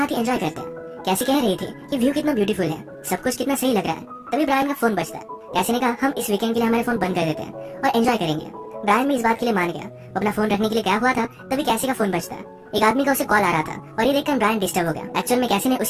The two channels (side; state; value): both; identical; correlation 1.00